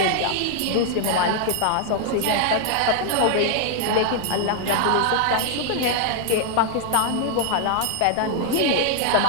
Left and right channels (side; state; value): both; different; correlation 0.00